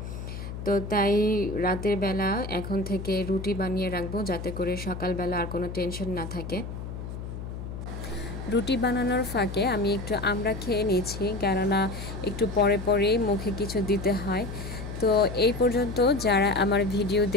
তো তাই রাতের বেলা এখন থেকে রুটি বানিয়ে রাখবো, যাতে করে সকালবেলা আর কোনো টেনশন না থাকে। রুটি বানানোর ফাঁকে আমি একটু আমড়া খেয়ে নিয়েছি, কেননা একটু পরে পরেই মুখে কিছু দিতে হয়। তো এই পর্যন্ত যারা আমার ভিডিও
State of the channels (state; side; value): noise; left; hum, 8 dB below the sound